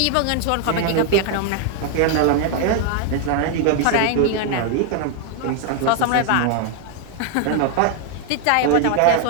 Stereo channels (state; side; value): different; both; correlation 0.00